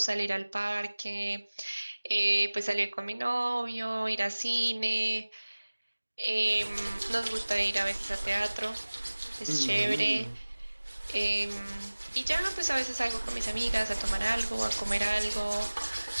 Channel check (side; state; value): both; inverted; correlation -1.00